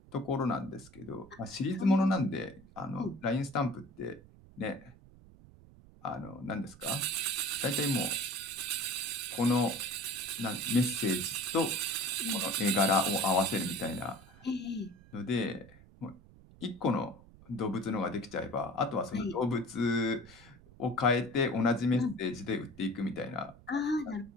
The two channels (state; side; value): noise; right; rumble, 23 dB below the sound